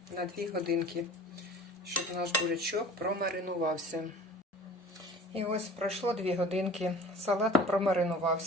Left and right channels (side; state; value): both; normal; correlation 0.43